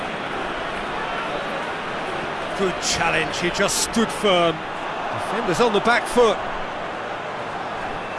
Good challenge, he just stood firm. Defenders on the back foot.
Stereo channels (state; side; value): identical; both; correlation 1.00